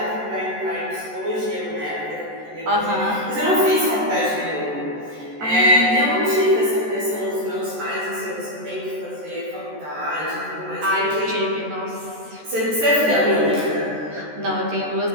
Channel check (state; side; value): late; left; 13 ms